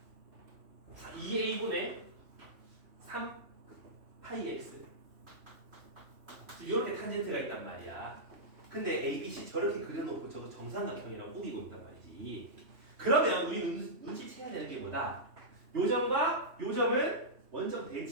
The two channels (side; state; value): left; late; 3.1 ms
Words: 이 2a분의 3 파이 x 이렇게 탄젠트가 있단 말이야. 근데 ABC 저렇게 그려놓고 저거 정삼각형이라고 꾸기고 있단 말이지. 그러면 우리 눈치채야 되는 게 뭐다? 요점과 요점은 원점